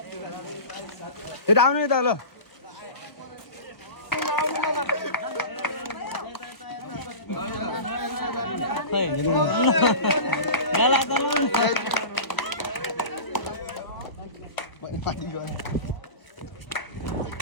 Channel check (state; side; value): late; right; 1.1 ms